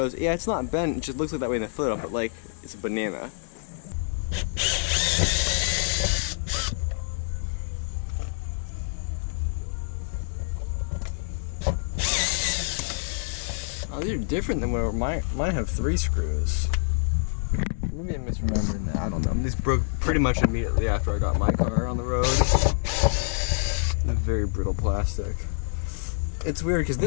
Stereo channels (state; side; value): silent; right; 61 dB below the other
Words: yeah, it's not bent. It just looks like that way in the photo, but like, it's a banana. Oh, these are different than where mine have 3 screws. Maybe I'm misremembering that. I don't know. These broke pretty much immediately after I got my car on the road. They're very brittle plastic. It's weird because